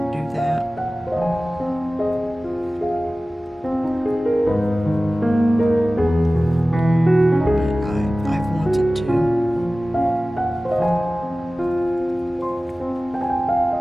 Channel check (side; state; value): both; normal; correlation 0.97